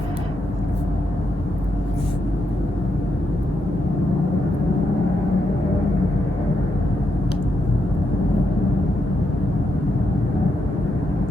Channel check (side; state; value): both; normal; correlation 0.82